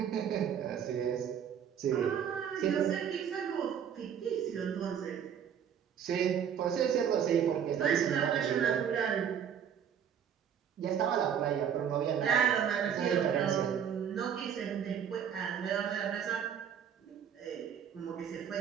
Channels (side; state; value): left; quieter; 8.3 dB